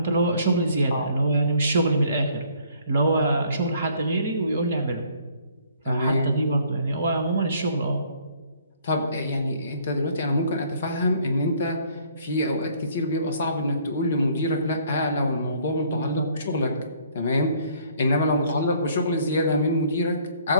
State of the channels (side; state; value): both; inverted; correlation -0.61